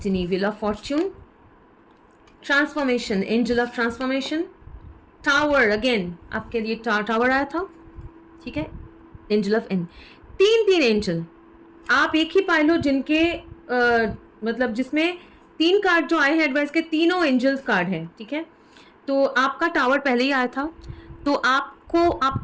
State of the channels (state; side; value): identical; both; correlation 1.00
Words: wheel of Fortune, transformation, angel of transformation, tower, again आपके लिए टावर आया था, ठीक है, एंजल ऑफ एन, तीन एंजल आप एक ही पाए लो जिनके मतलब जिसमें 3 कार्ड जो आए हैं एडवाइस के, तीनों एंजल्स कार्ड हैं, ठीक है, तो आपका टावर पहले ही आया था, तो आपको